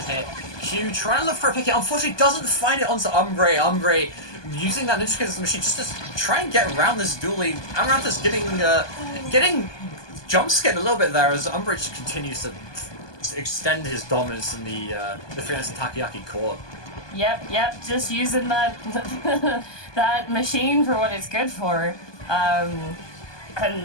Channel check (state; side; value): late; right; 1.2 ms